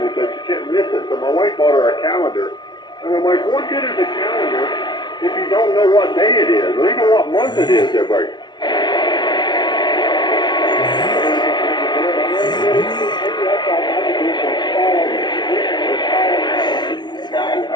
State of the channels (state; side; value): late; right; 0.20 ms